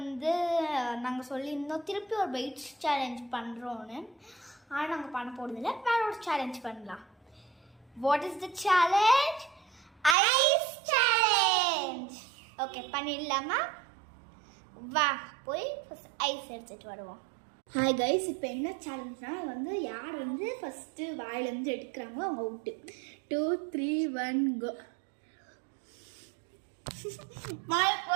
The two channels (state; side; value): drops out; left; at 10.2 s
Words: நாங்கள் சொல்லியிருந்தோம் திருப்பி ஒரு வெயிட் சேலஞ்ச் பண்ணுறோன்னு. ஆனால் நாங்கள் பண்ண போகிறதில்ல, வேற ஒரு சேலஞ்ச் பண்ணலாம். What is the challenge? Ice challenge. Okay, பண்ணிடலாமா? வா போய் ஃபஸ்ட் ஐஸ் எடுத்துகிட்டு வருவோம். ஹாய் கைஸ், இப்போ என்ன சேலஞ்ச்னா வந்து யார் வந்து ஃபஸ்ட்டு வாயிலேருந்து எடுக்கிறாங்களோ அவங்க அவுட்டு. 2 3 1 கோ.